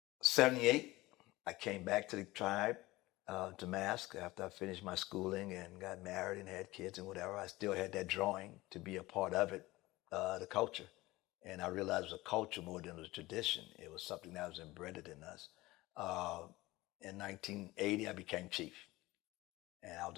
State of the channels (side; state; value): right; quieter; 19.4 dB